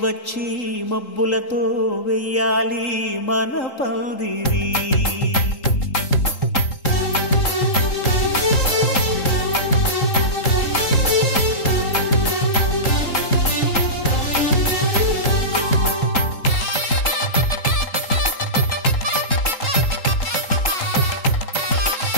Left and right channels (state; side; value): late; right; 3.8 ms